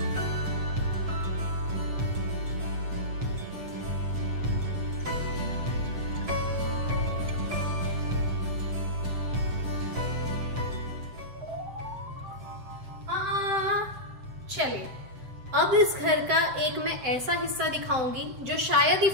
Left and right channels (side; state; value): left; late; 7.8 ms